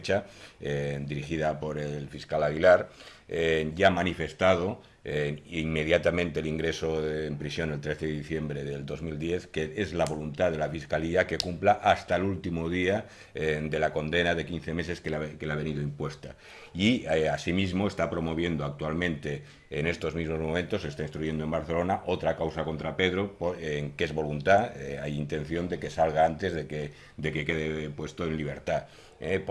dirigida por el fiscal Aguilar, ya ha manifestado inmediatamente el ingreso en prisión el 13 de diciembre del 2010, que es la voluntad de la Fiscalía que cumpla hasta el último día de la condena de 15 meses que le ha venido impuesta. Y asimismo está promoviendo actualmente, en estos mismos momentos, se está instruyendo en Barcelona otra causa contra Pedro, que es voluntad, hay intención de que salga antes de que quede puesto en libertad.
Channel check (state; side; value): identical; both; correlation 1.00